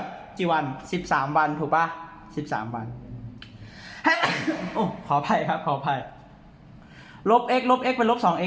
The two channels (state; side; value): identical; both; correlation 1.00